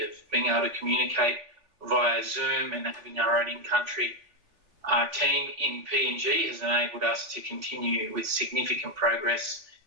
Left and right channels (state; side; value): late; left; 3.5 ms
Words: of being able to communicate via Zoom and having our own in-country team in PNG has enabled us to continue with significant progress,